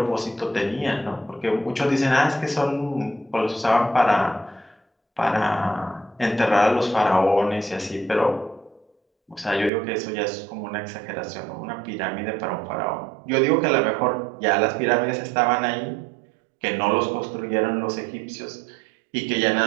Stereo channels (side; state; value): left; drops out; at 9.7 s